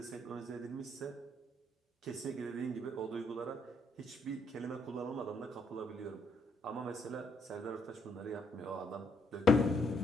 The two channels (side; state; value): both; normal; correlation 0.73